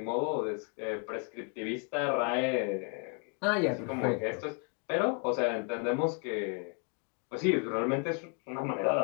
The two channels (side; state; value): right; quieter; 37.8 dB